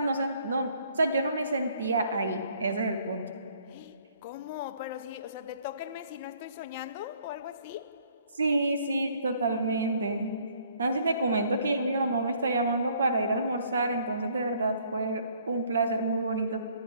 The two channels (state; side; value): inverted; both; correlation -0.62